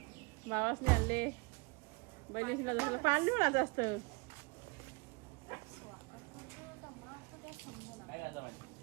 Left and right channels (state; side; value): quieter; left; 29.4 dB